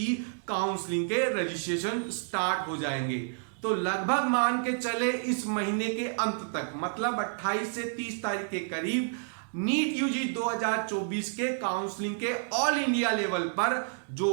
काउंसलिंग के रजिस्ट्रेशन स्टार्ट हो जाएंगे। तो लगभग मान के चले इस महीने के अंत तक, मतलब 28 से 30 तारीख के करीब नीट यूजी 2024 के काउंसलिंग के ऑल इंडिया लेवल पर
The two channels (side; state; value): left; silent; digital silence